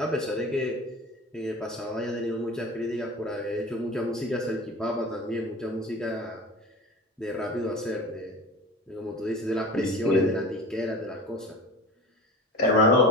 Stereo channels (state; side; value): normal; both; correlation 0.35